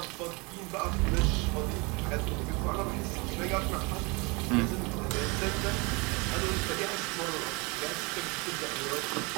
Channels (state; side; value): quieter; left; 28.0 dB